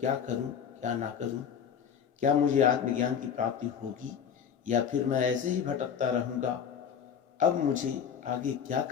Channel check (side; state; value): right; quieter; 7.7 dB